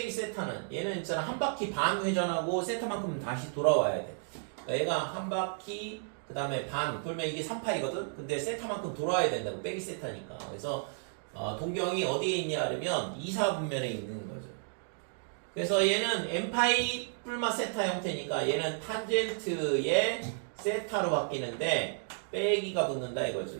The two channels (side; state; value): left; silent; digital silence